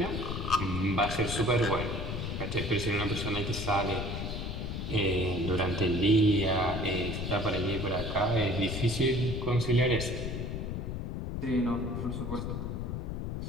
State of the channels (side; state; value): left; noise; rumble, 4 dB below the sound